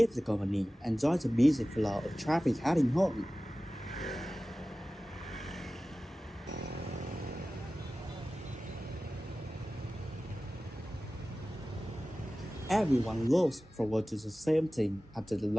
the company and join the busy flow of traffic heading home. Everyone looks forward to the same thing after the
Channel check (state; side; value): normal; both; correlation 0.96